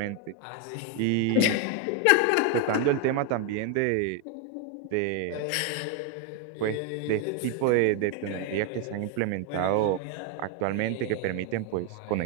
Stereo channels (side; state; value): both; different; correlation 0.01